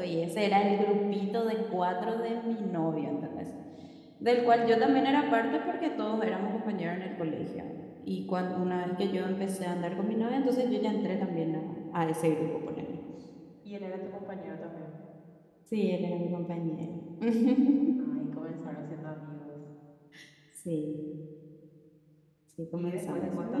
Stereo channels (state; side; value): identical; both; correlation 1.00